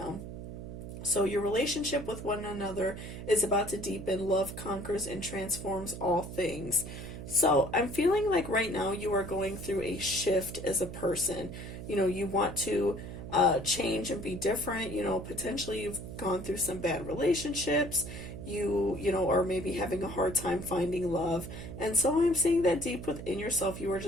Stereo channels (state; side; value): noise; right; hum, 9 dB below the sound